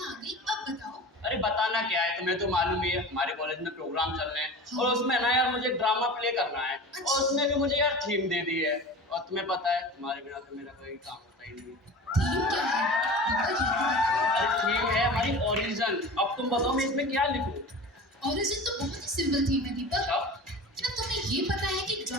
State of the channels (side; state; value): both; normal; correlation 0.35